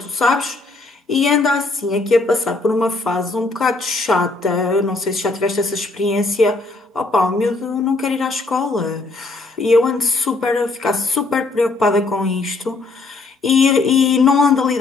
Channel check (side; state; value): right; quieter; 3.4 dB